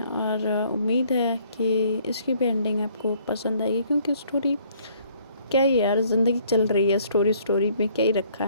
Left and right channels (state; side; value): inverted; both; correlation -0.62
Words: और उम्मीद है कि इसकी भी एंडिंग आपको पसंद आएगी, क्योंकि स्टोरी क्या ही यार, ज़िंदगी चल रही है, स्टोरी में क्या ही रखा